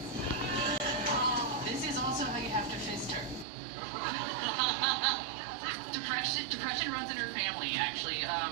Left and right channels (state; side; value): drops out; left; at 3.5 s